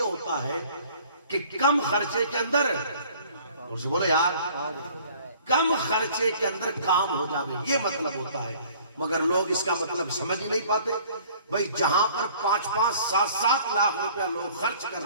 ہوتا ہے کہ کم خرچے کے اندر، اور سے بولو یار، کم خرچے کے اندر کام ہو جاوے، یہ مطلب ہوتا ہے۔ مگر لوگ اس کا مطلب سمجھ ہی نہیں پاتے۔ بھئی جہاں پر 5-5, 7-7 لاکھ روپیہ لوگ خرچ کر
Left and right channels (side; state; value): both; inverted; correlation -0.53